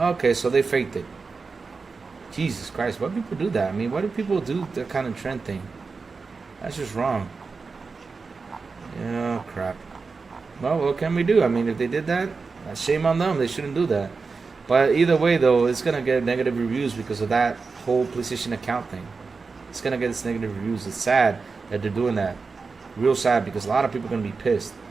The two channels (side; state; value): left; quieter; 4.5 dB